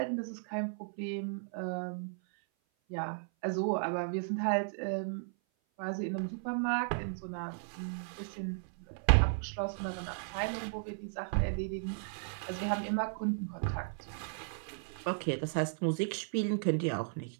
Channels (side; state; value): left; silent; 54 dB below the other